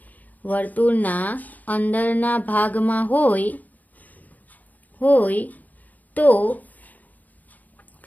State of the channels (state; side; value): late; right; 0.080 ms